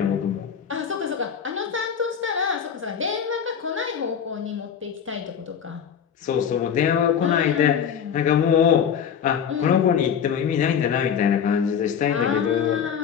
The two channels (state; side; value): quieter; right; 7.8 dB